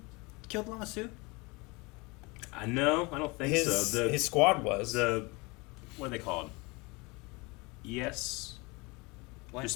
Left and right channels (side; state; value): right; quieter; 26.4 dB